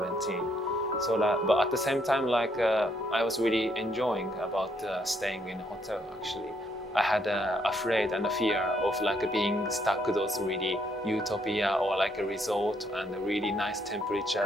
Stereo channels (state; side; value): normal; both; correlation 0.72